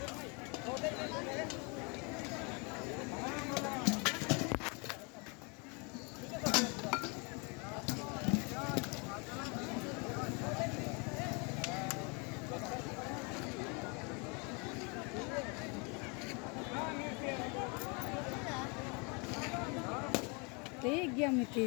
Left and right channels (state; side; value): quieter; right; 32.1 dB